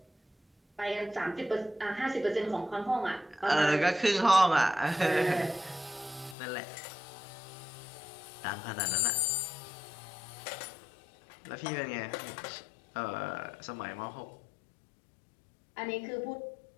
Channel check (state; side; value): drops out; right; at 6.4 s